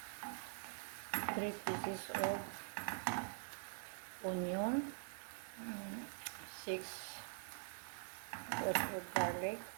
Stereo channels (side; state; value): left; silent; digital silence